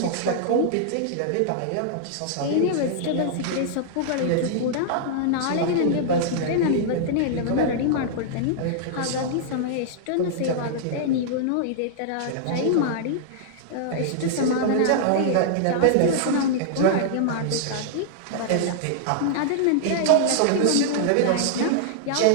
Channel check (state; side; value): different; both; correlation -0.01